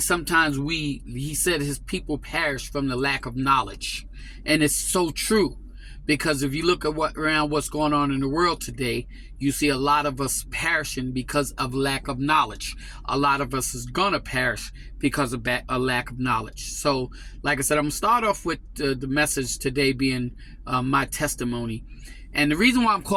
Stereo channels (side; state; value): both; identical; correlation 1.00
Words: sometimes he said his people perish from the lack of knowledge. And it's so true. Because if you look at what's going on in the world today, you see a lot of us perishing because of lack of knowledge. A lot of us is going to perish because of a lack of knowledge. So, like I said, I'm going to start off with the message today being my testimony. And the reason why I'm